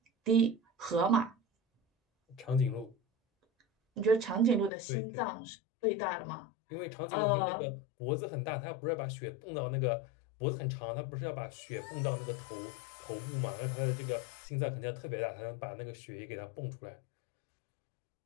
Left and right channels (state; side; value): drops out; right; at 4.7 s